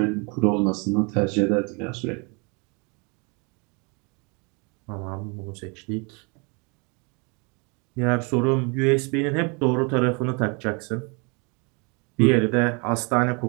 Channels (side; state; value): left; quieter; 32.0 dB